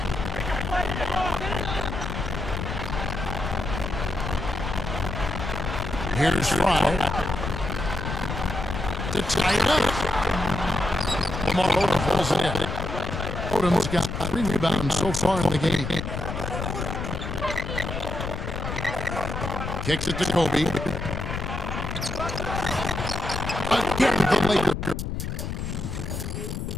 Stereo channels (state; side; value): noise; left; rumble, 4 dB below the sound